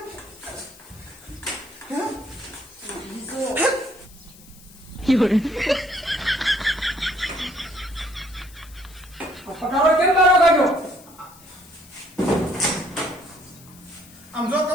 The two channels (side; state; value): left; noise; hiss, 22 dB below the sound